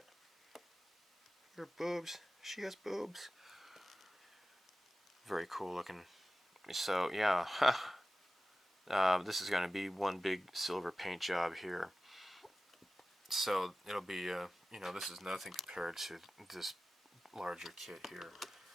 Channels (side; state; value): both; normal; correlation 0.96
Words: Her boobs. She has boobs. Very cool looking. So yeah, this is going to be one big silver paint job here. So it'll be, you know, this is nothing compared to this larger kit here.